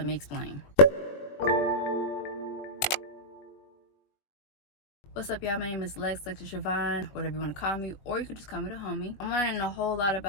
me explain. What's up, y'all? My name is Lex Siobhan, whatever you want to call me, or you could just call me the homie. I'm learning a whole lot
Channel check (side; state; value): right; late; 21 ms